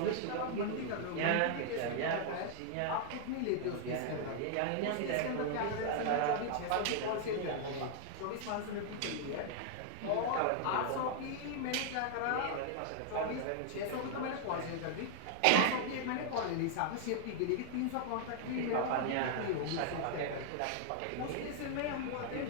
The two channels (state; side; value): different; both; correlation 0.00